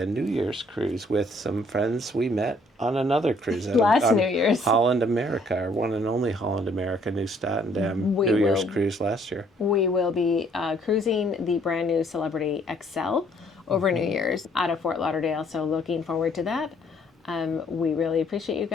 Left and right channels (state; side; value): normal; both; correlation 0.63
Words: New Year's cruise with some friends we met on another cruise. Last New Year's. Holland America, our one and only Holland America, New Statendam New Year's cruise last year. We will be cruising the brand new Celebrity XL over New Year's out of Fort Lauderdale, so looking forward to that. We really appreciate you